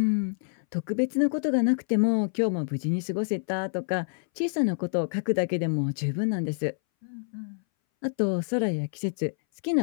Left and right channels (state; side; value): silent; right; 60 dB below the other